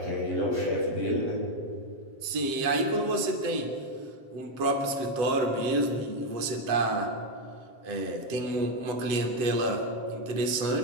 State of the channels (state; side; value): late; left; 7.5 ms